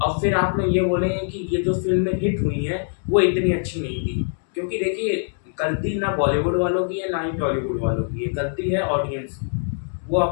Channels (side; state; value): right; silent; digital silence